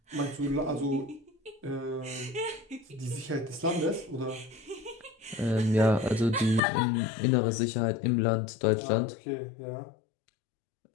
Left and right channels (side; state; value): right; drops out; at 6.6 s